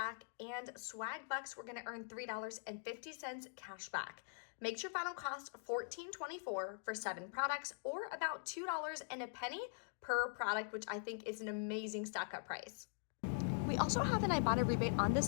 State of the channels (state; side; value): silent; right; digital silence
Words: and Swag Bucks, we're going to earn $3.50 cash back. Makes your final cost $14.24 for 7 products, or about $2 and a penny per product, which I think is an amazing stock-up price. We also have an Ibotta rebate on the